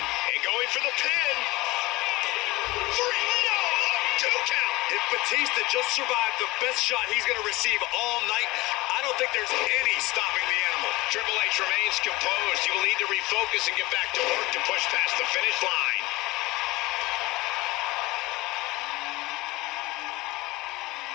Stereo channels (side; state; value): right; quieter; 20.8 dB